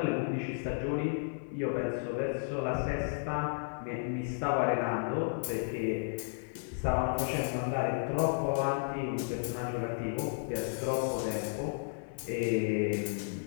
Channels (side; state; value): right; silent; 56 dB below the other